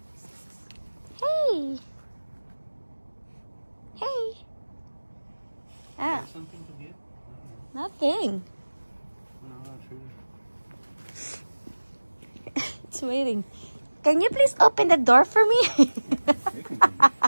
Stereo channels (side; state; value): both; inverted; correlation -1.00